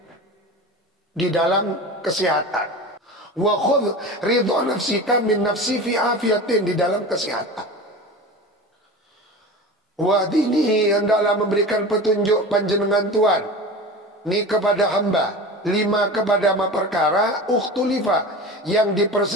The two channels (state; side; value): normal; both; correlation 0.32